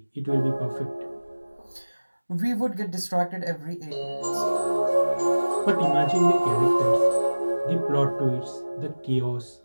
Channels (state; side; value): inverted; both; correlation -1.00